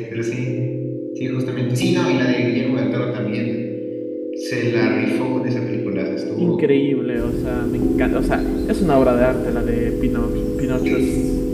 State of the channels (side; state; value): both; identical; correlation 1.00